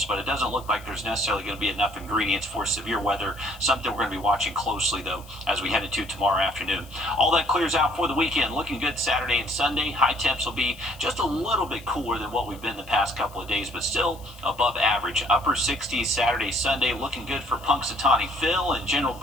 but it doesn't look like there's necessarily going to be enough ingredients for severe weather. Something we're going to be watching closely, though, as we head into tomorrow afternoon. All that clears out for the weekend. Looking good Saturday and Sunday. High temps will be just a little bit cooler than what we've been the past couple of days, but still above average. Upper 60s Saturday, Sunday. Looking good for Punxsutawney Phil and General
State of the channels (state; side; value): noise; left; hiss, 23 dB below the sound